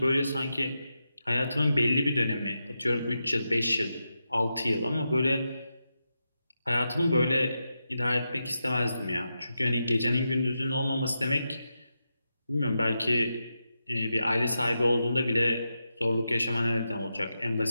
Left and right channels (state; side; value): inverted; both; correlation -0.88